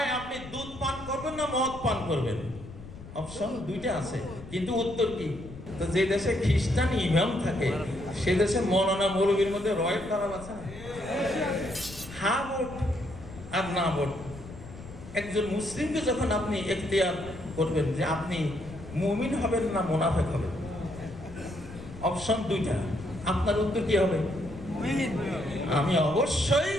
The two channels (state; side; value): noise; left; rumble, 15 dB below the sound